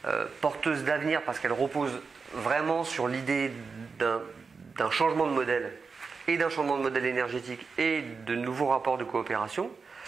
porteuses d'avenir parce qu'elles reposent vraiment sur l'idée d'un changement de modèle et d'un changement de modèle énergétique et de nouveaux rapports de coopération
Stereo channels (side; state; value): left; quieter; 4.9 dB